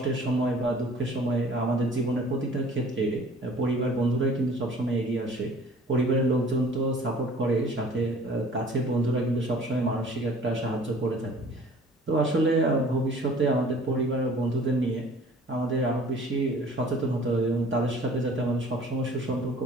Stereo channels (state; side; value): normal; both; correlation 0.50